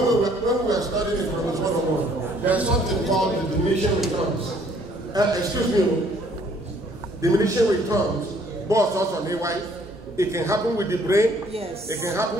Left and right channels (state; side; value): normal; both; correlation 0.61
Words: we were studying economics 101, there's something called the diminishing returns. Excuse me, diminishing returns, both also on AY. It can happen with the brain. Yes. It can